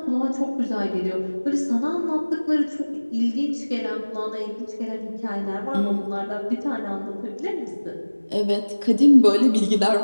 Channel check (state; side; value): inverted; both; correlation -1.00